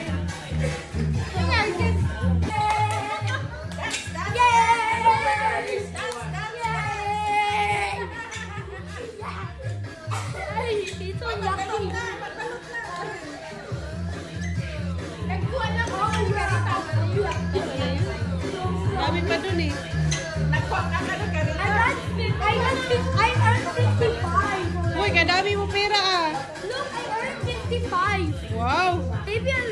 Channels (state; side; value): identical; both; correlation 1.00